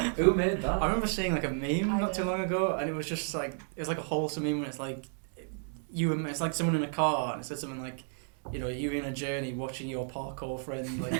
Who made that? I remember seeing like a meme I not too did. long ago, and it was just like it's like a wholesome meme. When it's like it's like someone in a car, and it said something like, you know, you in a journey watching your parkour friend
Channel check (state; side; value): silent; left; 56 dB below the other